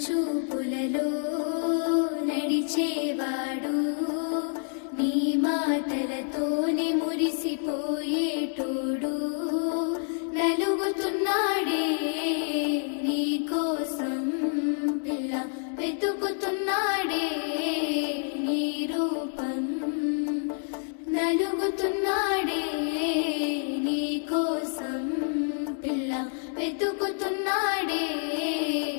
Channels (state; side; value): silent; right; 56 dB below the other